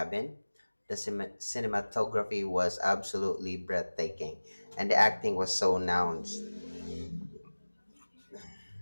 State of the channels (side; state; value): both; inverted; correlation -1.00